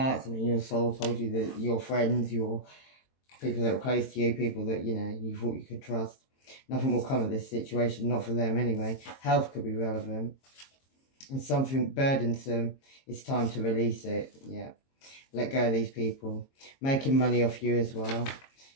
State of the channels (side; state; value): right; late; 22 ms